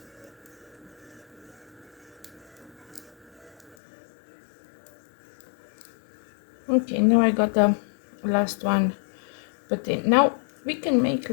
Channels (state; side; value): drops out; right; at 3.8 s